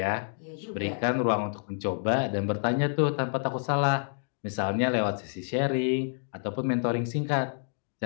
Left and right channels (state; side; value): silent; right; digital silence